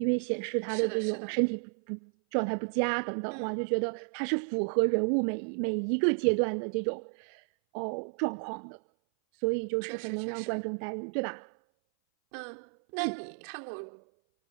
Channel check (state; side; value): silent; left; 57 dB below the other